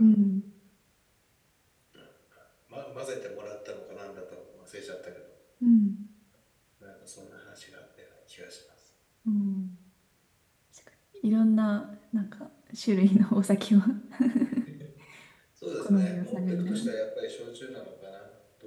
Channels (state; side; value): identical; both; correlation 1.00